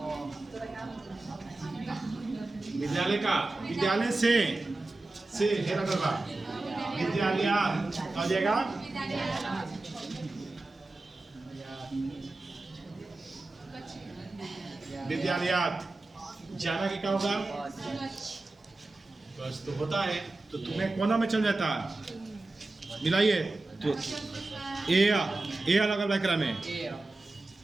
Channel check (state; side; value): quieter; left; 3.0 dB